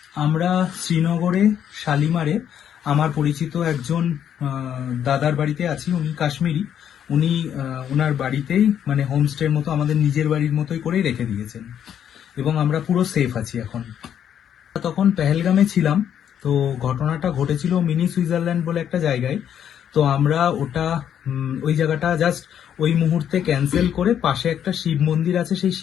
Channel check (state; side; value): quieter; right; 9.3 dB